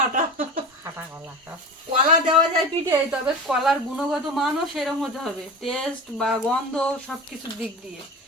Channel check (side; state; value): both; normal; correlation 0.29